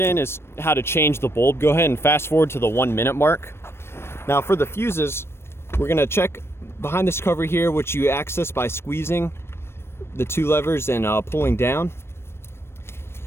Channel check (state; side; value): late; right; 0.12 ms